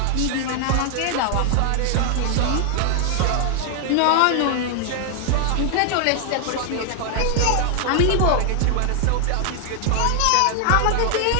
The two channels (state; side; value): different; both; correlation 0.00